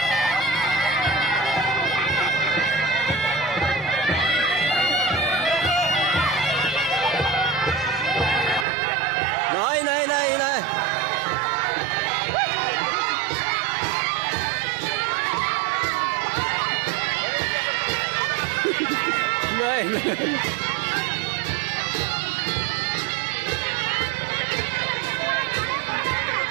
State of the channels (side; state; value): left; drops out; at 8.7 s